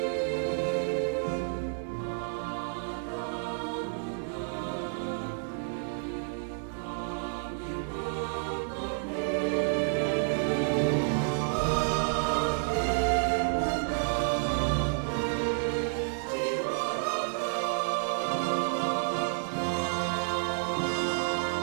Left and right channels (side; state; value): left; silent; 56 dB below the other